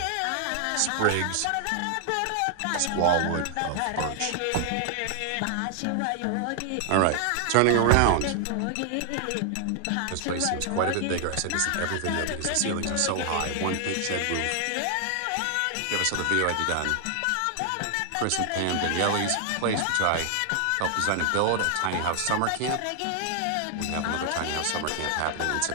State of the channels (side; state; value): both; different; correlation 0.00